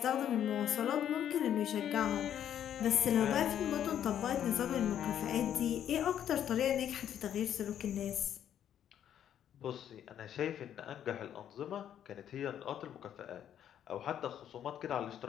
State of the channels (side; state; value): right; quieter; 10.1 dB